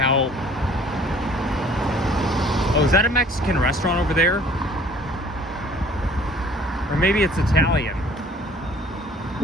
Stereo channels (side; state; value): both; normal; correlation 0.53